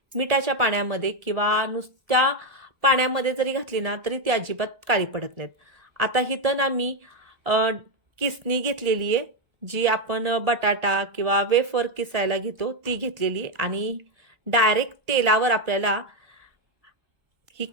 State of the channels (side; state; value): left; late; 1.7 ms